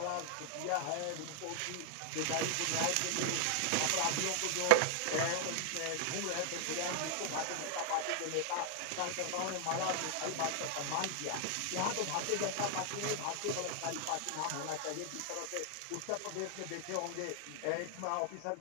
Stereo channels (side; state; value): both; different; correlation -0.01